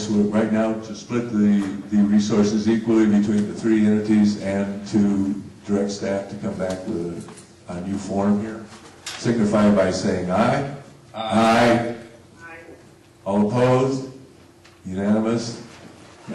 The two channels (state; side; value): identical; both; correlation 1.00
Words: we're right now to split the resources equally between the three entities and to direct staff to come back with a new form here, signify by saying aye. Aye. All opposed? Unanimous?